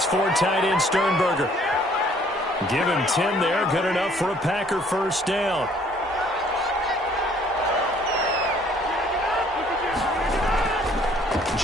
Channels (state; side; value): normal; both; correlation 0.60